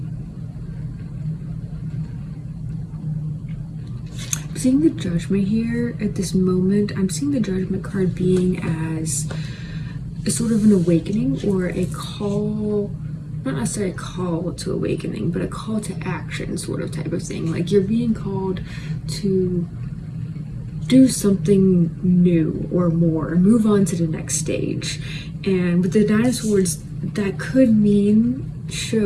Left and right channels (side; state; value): both; identical; correlation 1.00